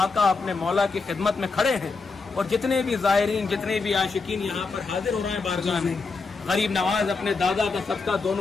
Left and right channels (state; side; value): quieter; right; 4.3 dB